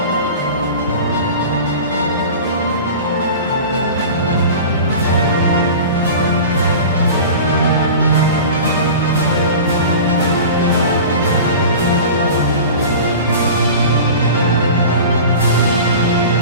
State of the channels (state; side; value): inverted; both; correlation -0.36